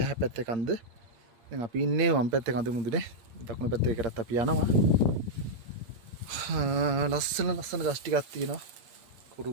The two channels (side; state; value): left; late; 8.7 ms